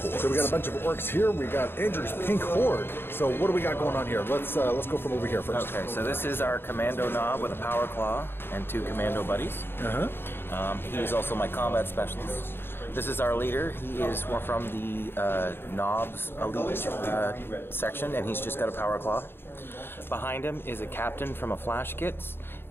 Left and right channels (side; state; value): right; late; 0.11 ms